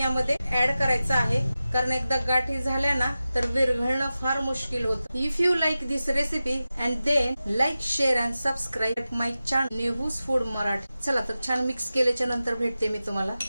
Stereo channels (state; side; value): inverted; both; correlation -0.94